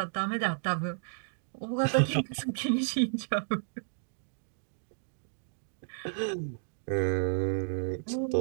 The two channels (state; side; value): silent; left; digital silence